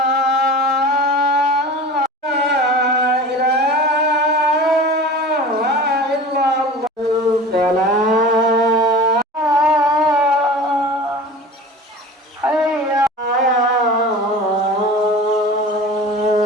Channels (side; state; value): both; normal; correlation 0.37